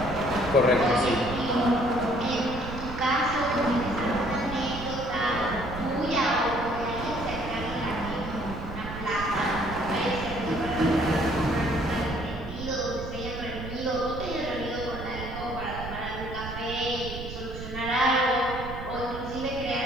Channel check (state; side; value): noise; right; rumble, 9 dB below the sound